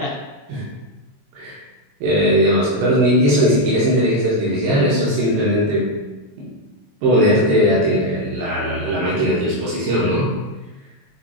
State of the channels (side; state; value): left; late; 21 ms